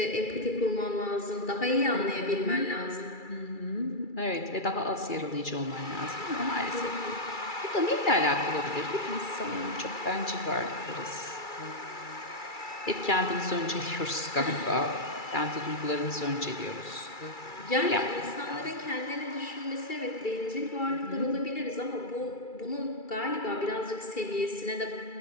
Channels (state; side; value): late; right; 2.3 ms